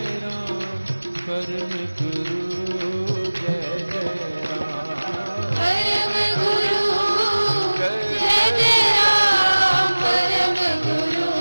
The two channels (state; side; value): inverted; both; correlation -1.00